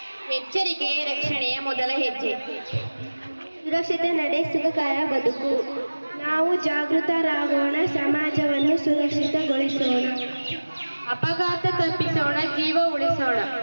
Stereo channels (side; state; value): both; inverted; correlation -1.00